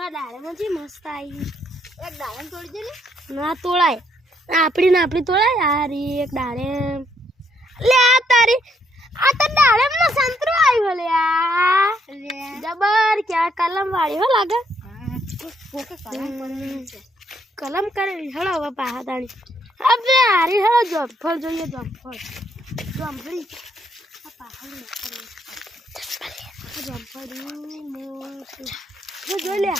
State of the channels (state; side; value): normal; both; correlation 0.72